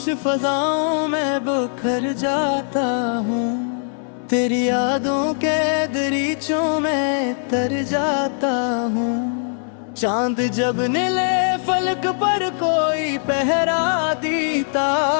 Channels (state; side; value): silent; right; digital silence